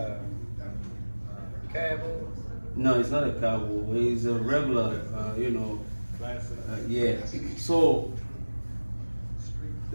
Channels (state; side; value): inverted; both; correlation -1.00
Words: Cabo? No, it's not a cowboy. It's a regular, Classic. yeah. So